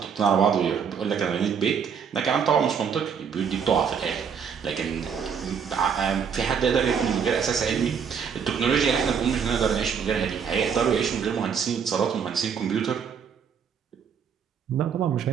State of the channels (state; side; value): quieter; left; 7.0 dB